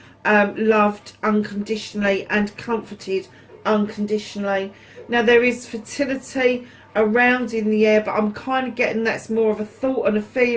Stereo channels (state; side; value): identical; both; correlation 1.00